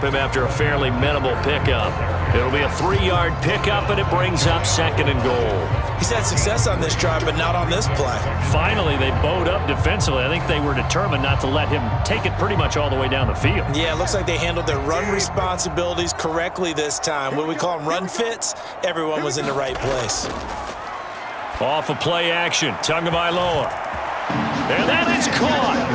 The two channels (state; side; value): identical; both; correlation 1.00